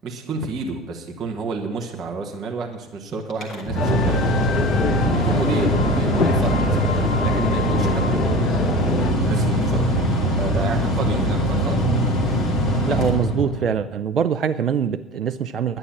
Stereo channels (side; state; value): both; normal; correlation 0.34